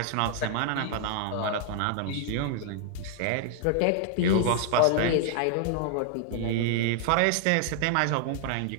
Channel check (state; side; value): different; both; correlation 0.00